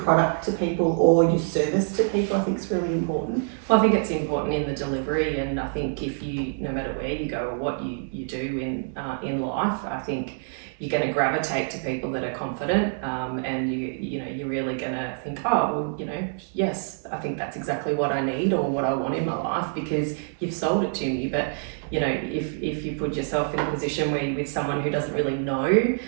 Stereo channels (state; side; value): silent; left; digital silence